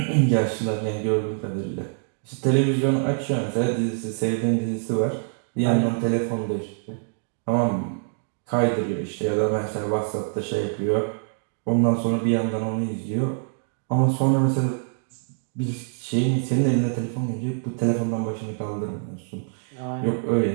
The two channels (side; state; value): left; silent; digital silence